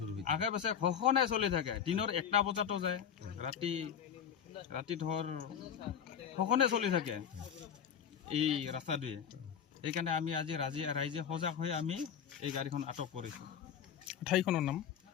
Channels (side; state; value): right; quieter; 8.1 dB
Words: হৈ আগে পাছে সঘনাই চলি থাকে। দিনৰ 1টা বজাতো যায়, ৰাতি ধৰ সঘনে চলি থাকে এই ৰাস্তাটোৱে। সেইকাৰণে আমি আজি ৰাইজে সজাগ হৈ আমি এই গাড়ীখন আটক কৰিছোঁ। ঠাইখনৰ নাম?